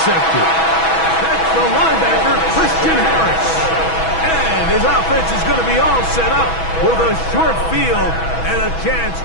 That's the linebacker, Christian Harris. And his offense is going to be all set up with a short field and a chance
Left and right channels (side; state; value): right; late; 6.1 ms